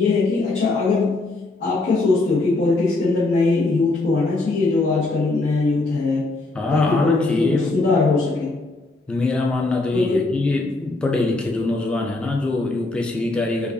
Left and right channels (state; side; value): quieter; right; 3.1 dB